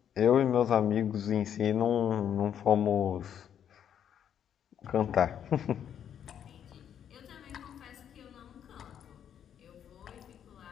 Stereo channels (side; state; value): right; quieter; 9.2 dB